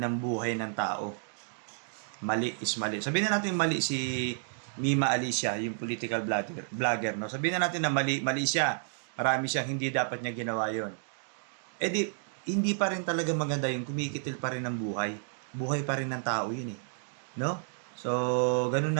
buhay ng tao. Mali is mali. Sabihin na natin mali si Mima Alicia, yung political vlogger, no? Sabihin na natin na mali siya. Marami siyang hindi dapat niya ginawa yon. Hindi pa rin talaga maganda yung kumikitil pa rin ng buhay. Buhay pa rin ng tao yun No? So, ganun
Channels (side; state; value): left; silent; digital silence